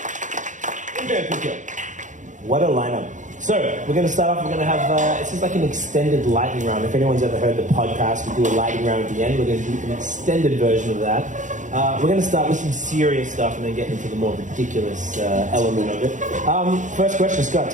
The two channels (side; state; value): left; late; 0.36 ms